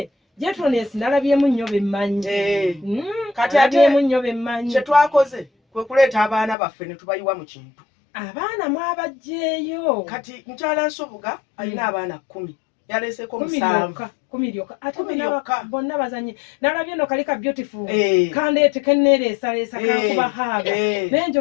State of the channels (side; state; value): right; drops out; at 6.6 s